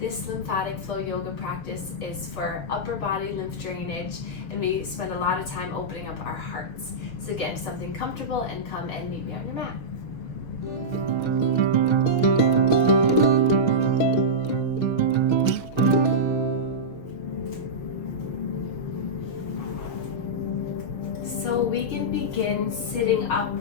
lymphatic flow yoga practice is for upper body lymph drainage, and we spend a lot of time opening up our hearts. So get into something comfortable and come and meet me on your mat. So we can begin sitting up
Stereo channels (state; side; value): late; right; 6.3 ms